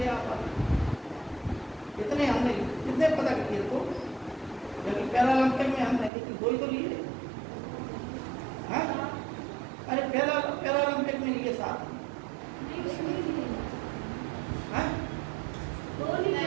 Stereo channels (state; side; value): drops out; left; at 6.1 s